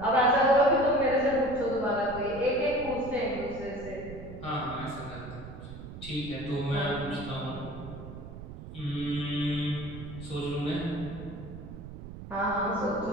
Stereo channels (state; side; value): noise; right; rumble, 12 dB below the sound